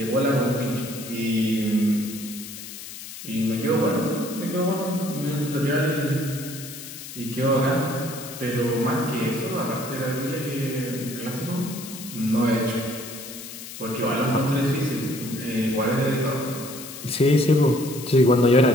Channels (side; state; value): left; noise; hiss, 12 dB below the sound